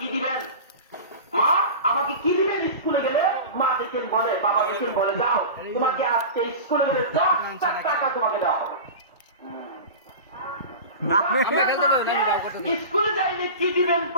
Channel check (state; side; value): inverted; both; correlation -0.31